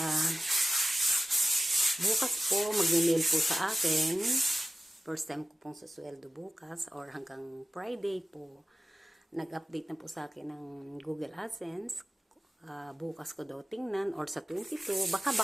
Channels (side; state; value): both; normal; correlation 0.94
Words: At, bukas po, mag-mail po sa akin. First time ko pong susweldo bukas or hanggang Friday po. Nag-update na po sa akin ng Google AdSense. Bukas ko daw tingnan or sa 22. Baka